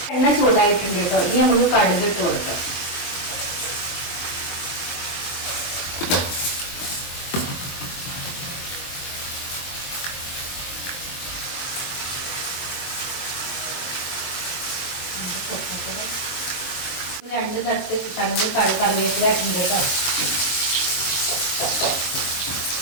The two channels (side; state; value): right; late; 23 ms